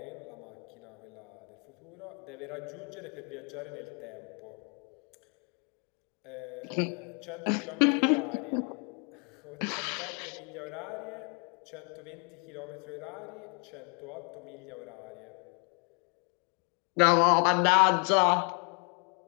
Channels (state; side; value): quieter; right; 37.2 dB